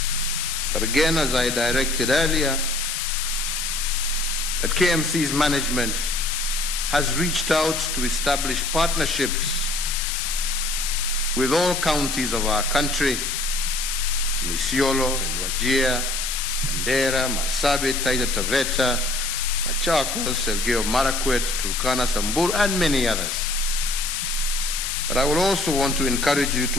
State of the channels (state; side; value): noise; left; hiss, 2 dB below the sound